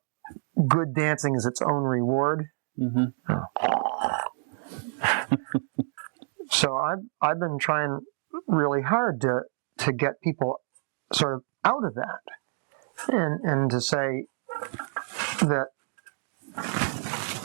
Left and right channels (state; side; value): silent; left; 59 dB below the other